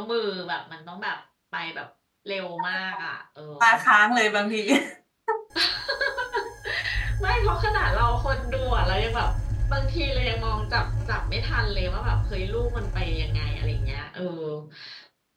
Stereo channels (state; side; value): identical; both; correlation 1.00